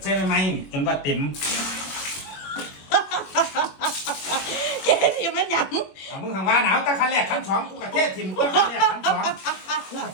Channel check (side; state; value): right; late; 21 ms